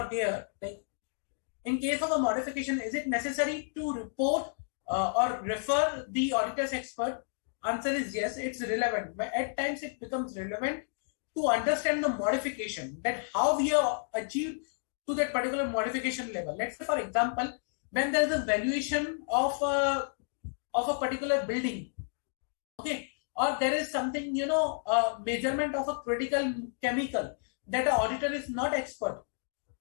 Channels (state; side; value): silent; right; digital silence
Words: here, like in case of a modification, is it necessary to report or refer the auditor's expert? Answer is yes, it's relevant. But at times it becomes relevant to understand the modification, that how we have achieved to that particular modification level. Let's say, for example, when there is a valuation of a particular building, okay, or there is something, measurement of a critical chemical that an auditor is not expert.